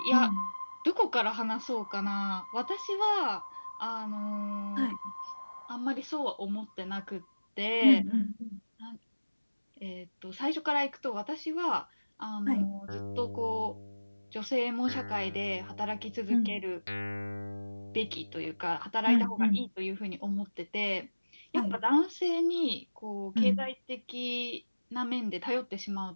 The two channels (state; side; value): inverted; both; correlation -1.00